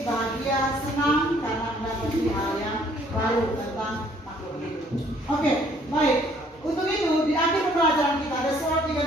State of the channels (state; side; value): normal; both; correlation 0.61